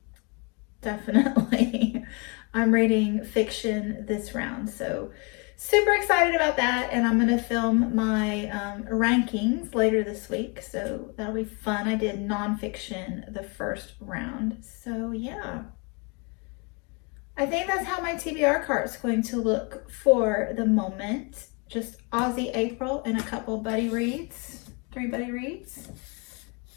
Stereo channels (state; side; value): quieter; right; 32.4 dB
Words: Definitely. I'm reading fiction this round, so super excited about that, and I'm going to film my rankings later this week, so that'll be fun. I did nonfiction the first round, so yeah. I think that's how my TBR cart is going to look for the moment. Just Aussie April and a couple buddy reads, 3 buddy reads,